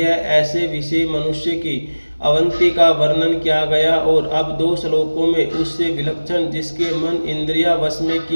ऐसे विषय मनुष्य की अवंती का वर्णन किया गया और अब दो श्लोकों में उससे विलक्षण जिसके मन इंद्रिया वश में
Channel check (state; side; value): inverted; both; correlation -1.00